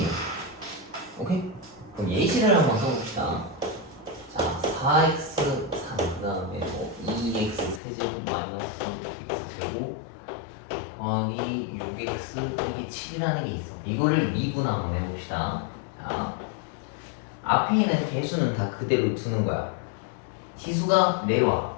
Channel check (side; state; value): right; drops out; at 7.8 s